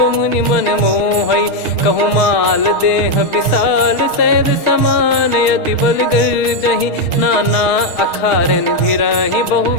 मुनि मन मोहई। भई। कहूँ माल देह विशाल सैद समान अति बल गर्जहि। नाना अखारन भिरहि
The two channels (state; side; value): late; right; 6.4 ms